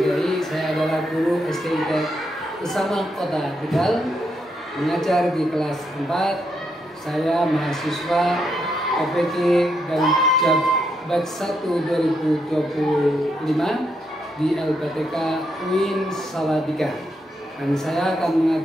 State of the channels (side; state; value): both; normal; correlation 0.79